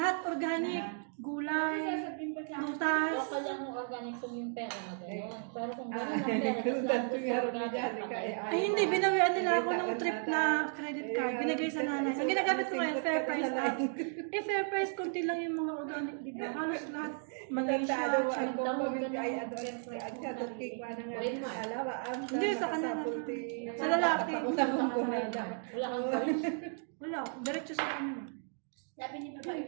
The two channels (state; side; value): silent; left; 55 dB below the other